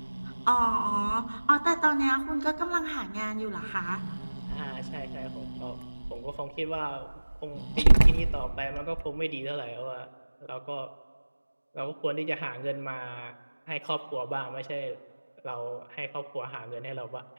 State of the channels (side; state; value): both; inverted; correlation -1.00